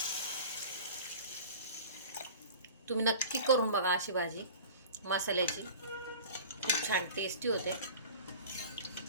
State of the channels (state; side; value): inverted; both; correlation -0.39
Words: तुम्ही नक्की करून बघा अशी भाजी मसाल्याची. खूप छान टेस्टी होते.